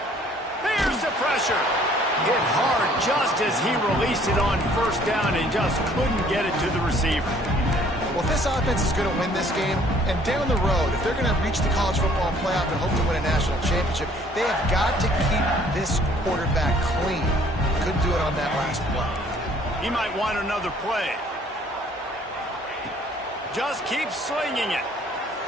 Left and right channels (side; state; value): both; normal; correlation 0.59